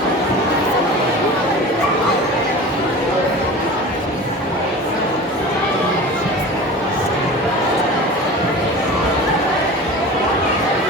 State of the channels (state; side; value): normal; both; correlation 0.35